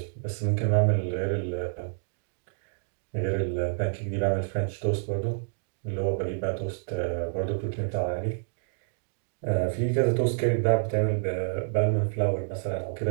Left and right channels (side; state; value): left; silent; digital silence